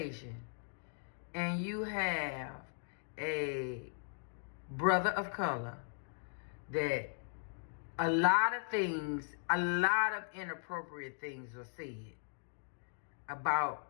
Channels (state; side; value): silent; right; digital silence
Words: and you have a brother of color, that a lot of inappropriate things are said about